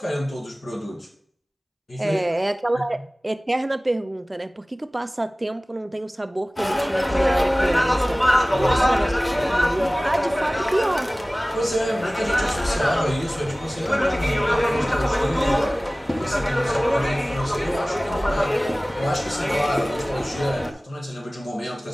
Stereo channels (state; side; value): normal; both; correlation 0.98